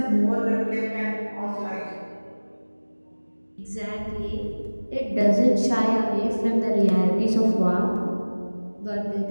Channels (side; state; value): both; inverted; correlation -1.00